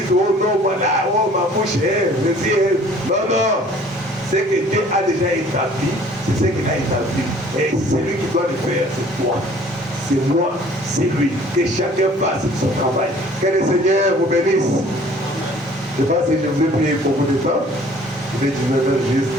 oh non, voilà, oh ma bouche est, je dis, non, non. Ce que Dieu a déjà établi, c'est ce qu'il a établi. Et celui qui doit le faire, c'est toi. C'est moi, c'est lui. Que chacun fasse son travail. Que le Seigneur vous bénisse. Je ne sais pas si je vous ai prié beaucoup de temps. Il est 19h juste.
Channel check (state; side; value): normal; both; correlation 0.53